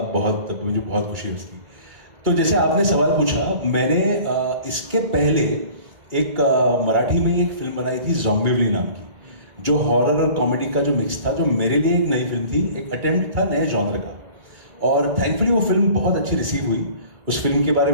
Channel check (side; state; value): left; late; 2.3 ms